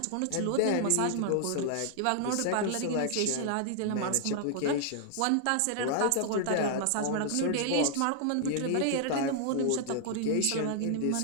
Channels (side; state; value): both; different; correlation -0.01